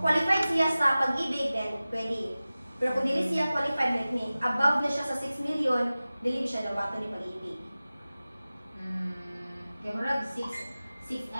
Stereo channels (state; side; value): inverted; both; correlation -0.97